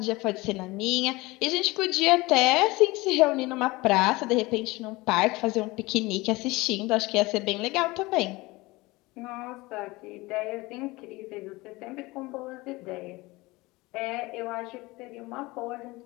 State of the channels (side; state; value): right; quieter; 21.8 dB